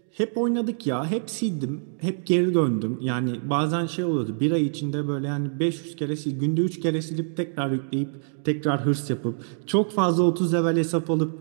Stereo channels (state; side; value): silent; left; digital silence